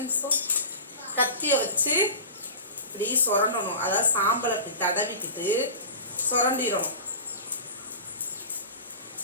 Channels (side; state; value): both; inverted; correlation -0.34